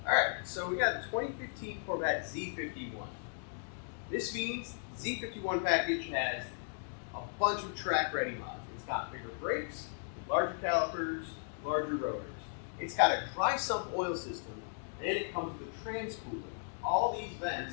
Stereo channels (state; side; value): silent; right; digital silence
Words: Alright, so we got the 2015 Corvette Z51. This means the Z51 package has a bunch of track-ready mods. It's got bigger brakes, larger calipers, larger rotors. It's got a dry sump oil system, and it comes with a transpooler. All these